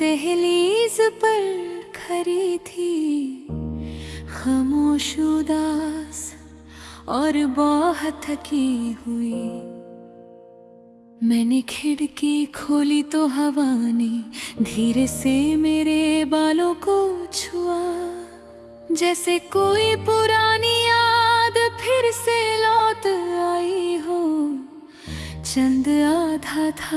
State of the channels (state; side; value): identical; both; correlation 1.00